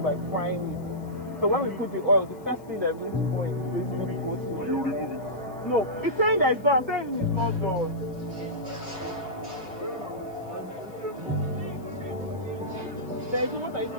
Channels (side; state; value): left; noise; hiss, 28 dB below the sound